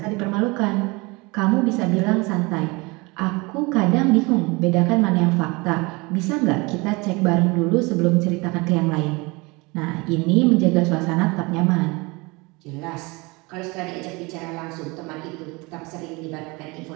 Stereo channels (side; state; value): left; quieter; 25.7 dB